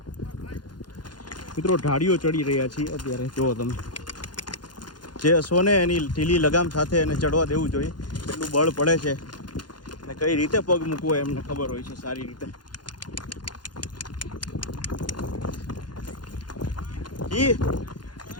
મિત્રો ઢાળીઓ ચડી રહ્યા છીએ અત્યારે. જુઓ તમે, જે અશ્વને એની ઢીલી લગામ સાથે એને ચડવા દેવું જોઈએ, એટલું બળ પડે છે, અને કઈ રીતે પગ મૂકવો એમને ખબર હોય છે સારી રીતે. જી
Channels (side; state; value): right; late; 0.71 ms